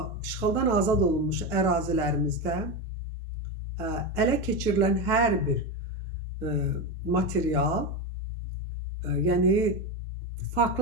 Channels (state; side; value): normal; both; correlation 0.15